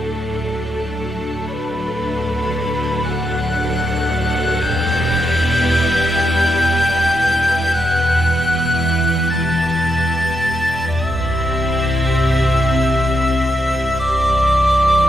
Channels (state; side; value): normal; both; correlation 0.82